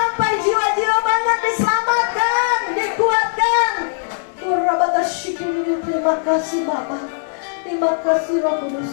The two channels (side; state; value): right; silent; digital silence